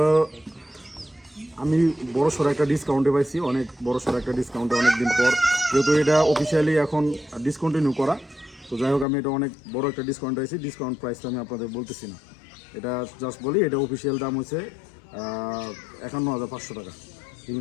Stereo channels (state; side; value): drops out; right; at 9.1 s